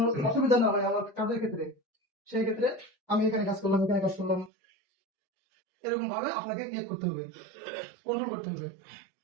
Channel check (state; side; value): drops out; left; at 4.5 s